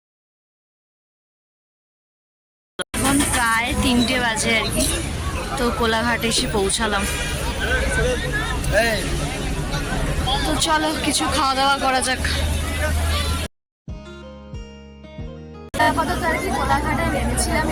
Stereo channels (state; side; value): identical; both; correlation 1.00